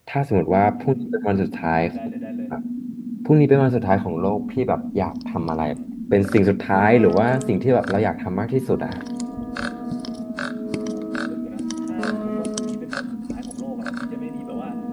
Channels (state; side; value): identical; both; correlation 1.00